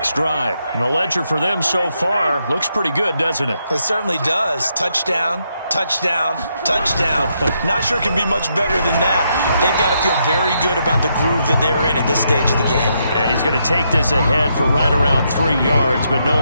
drive. And the ledger for them so far looks pretty good, doesn't it? It certainly does. Touchdown, touchdown, touchdown. Not sure it can be much better than that. They've got to feel very good about the groove that they're in at this stage of the game. And he's going to take this ahead for right around 3 yards, but no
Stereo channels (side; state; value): both; inverted; correlation -0.78